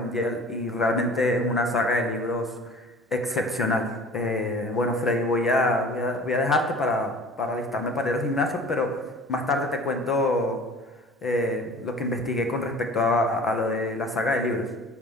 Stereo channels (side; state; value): both; normal; correlation 0.44